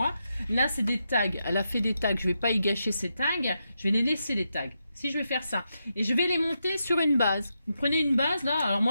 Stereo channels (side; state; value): both; inverted; correlation -0.85